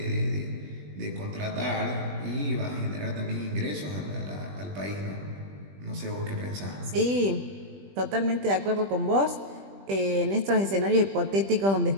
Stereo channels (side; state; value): left; late; 20 ms